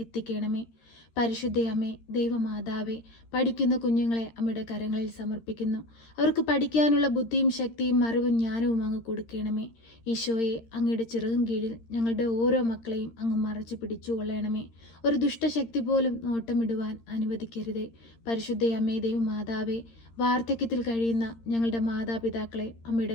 പരിശുദ്ധ അമ്മേ, ദൈവമാതാവേ, പഠിക്കുന്ന കുഞ്ഞുങ്ങളെ അമ്മയുടെ കരങ്ങളിൽ സമർപ്പിക്കുന്നു. അവർക്ക് പഠിക്കാനുള്ള ബുദ്ധിയും ശക്തിയും അറിവും ജ്ഞാനവും അങ്ങ് കൊടുക്കണമേ. ഈശോയെ, അങ്ങയുടെ ചിറകും കീഴിൽ ഞങ്ങളുടെ ഓരോ മക്കളെയും അങ്ങ് മറച്ചു പിടിച്ചുകൊള്ളണമേ. ഒരു ദുഷ്ടശക്തി പോലും നോട്ടമിടുവാൻ അനുവദിക്കരുതേ. പരിശുദ്ധ അമ്മേ, ദൈവമാതാവേ, വാർദ്ധക്യത്തിൽ കഴിയുന്ന ഞങ്ങളുടെ മാതാപിതാക്കളെ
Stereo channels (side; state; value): right; late; 13 ms